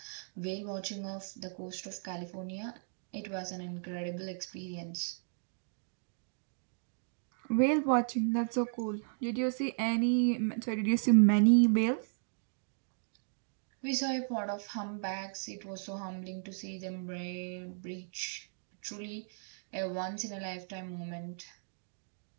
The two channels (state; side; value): silent; left; digital silence